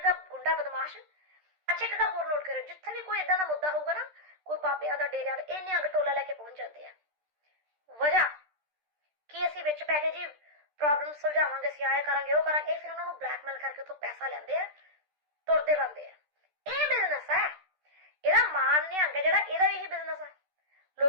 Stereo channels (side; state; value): left; late; 13 ms